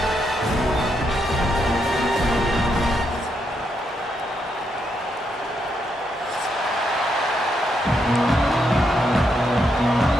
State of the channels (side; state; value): both; normal; correlation 0.79